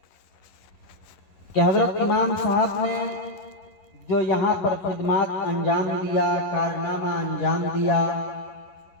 کہ حضرت امام صاحب نے جو یہاں پر خدمات انجام دیا، کارنامہ انجام دیا،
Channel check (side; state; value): right; late; 11 ms